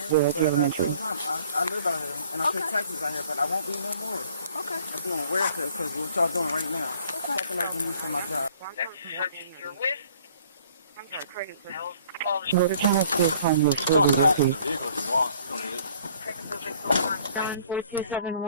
live out here, and I pay taxes out here, but I won't be no more. Okay. I'm doing welfare because what y'all doing right now. Fucking up me for my job. You're with? I'm sorry, crazy. So the channel still calling you You can toss that in the vehicle if you want. You don't need it.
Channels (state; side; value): inverted; both; correlation -0.57